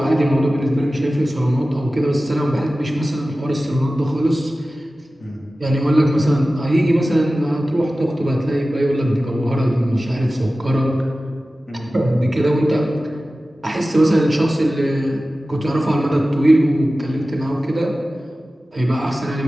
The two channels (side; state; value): both; normal; correlation 0.96